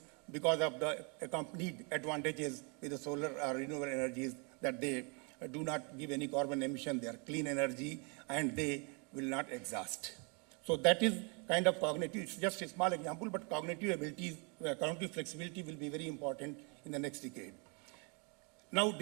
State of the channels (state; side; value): quieter; left; 33.8 dB